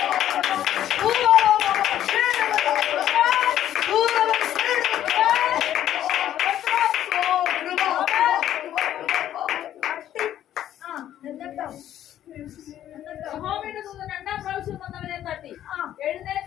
യഹോവയുടെ ദൂതൻ രണ്ടാം പ്രാവശ്യം വന്നവനെ തട്ടി,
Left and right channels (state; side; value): quieter; right; 11.6 dB